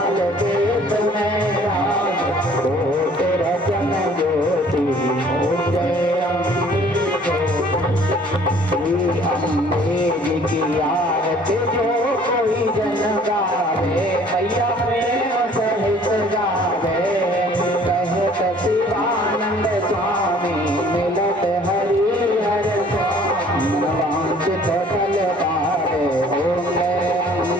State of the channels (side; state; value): both; normal; correlation 0.54